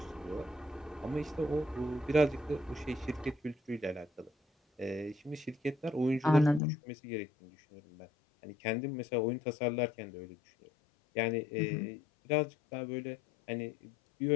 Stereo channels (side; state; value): right; drops out; at 6.6 s